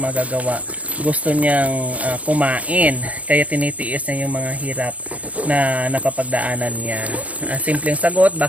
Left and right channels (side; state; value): left; late; 0.068 ms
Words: magagawa. Gusto niyang kumain. Kaya tinitiis niya yung mga hirap na napapagdaanan niya. Simpleng sagot,